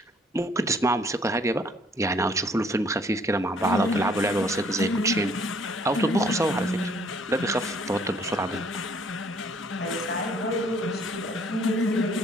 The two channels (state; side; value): normal; both; correlation 0.61